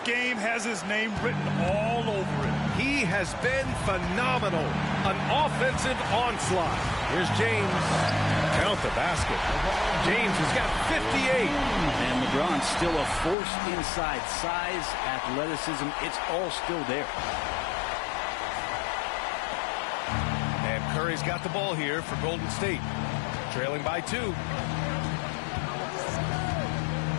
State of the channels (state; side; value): drops out; right; at 13.4 s